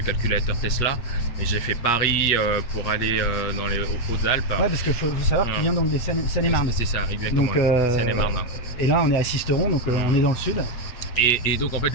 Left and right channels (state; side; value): late; right; 8.4 ms